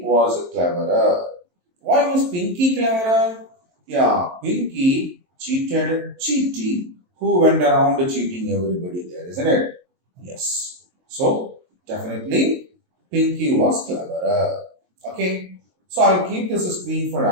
was cleverer. Why was Pinky cleverer? Yeah, Pinky cheated Cheaty, who went around cheating everybody there, isn't it? Yes. So, definitely Pinky was cleverer. Okay. So, I'll keep this screen for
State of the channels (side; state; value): left; late; 23 ms